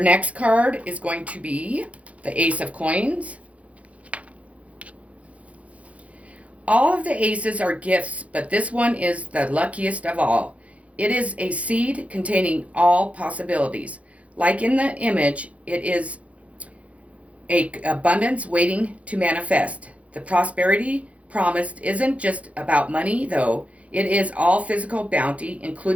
next card is going to be the Ace of Coins. All of the aces are gifts, but this one is the luckiest of all. It is a seed containing all possibilities. Like in the image, it is a abundance waiting to manifest. The prosperity promised isn't just about money, though. It is all physical bounty,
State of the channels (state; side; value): late; left; 0.065 ms